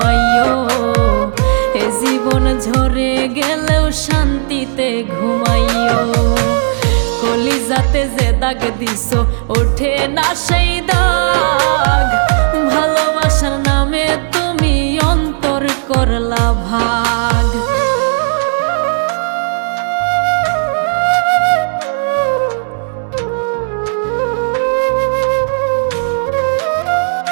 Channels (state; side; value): silent; left; digital silence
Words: এ জীবন ঝরে গেলেও শান্তিতে ঘুমাইও। কলিজাতে যে দাগ দিছো ওঠে না সেই দাগ, ভালোবাসার নামে তুমি অন্তর করলা ভাগ।